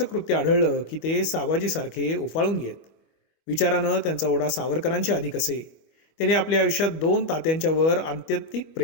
कृत्य आढळलं की ते साबाजीसारखे उफाळून येत. विचारानं त्यांचा ओढा सावरकरांच्या अधिक असे. त्यांनी आपल्या आयुष्यात 2 तात्यांच्या वर आत्यंतिक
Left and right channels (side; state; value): right; late; 25 ms